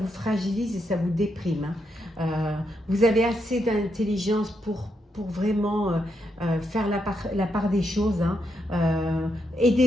fragilise et ça vous déprime. Hein. Vous avez assez d'intelligence pour vraiment faire la part des choses. Hein.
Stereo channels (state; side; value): normal; both; correlation 0.81